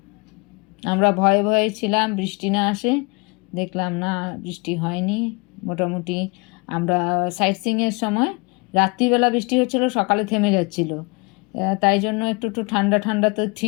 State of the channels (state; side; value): quieter; right; 29.6 dB